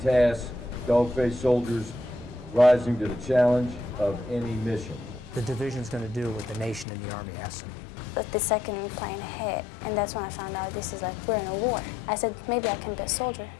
dog-faced soldiers rising to the challenge of any mission. The division's going to do what the nation and the Army asks them. But the second plane hit, and that's when I found out this is like we're in a war. I said, maybe I can be a soldier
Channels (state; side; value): drops out; right; at 6.9 s